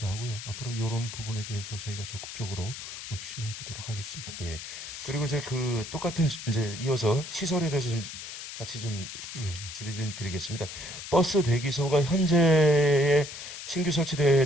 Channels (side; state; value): left; noise; hiss, 10 dB below the sound